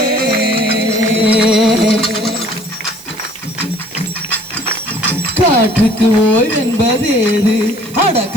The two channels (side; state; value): right; noise; hiss, 18 dB below the sound